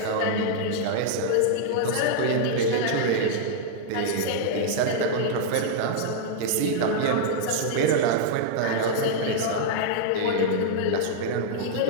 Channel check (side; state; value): both; different; correlation -0.01